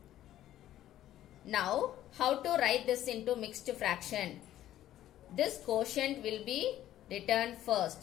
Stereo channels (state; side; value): quieter; right; 12.8 dB